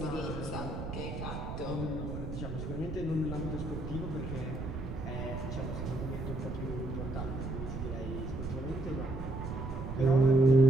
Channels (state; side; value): noise; right; rumble, 7 dB below the sound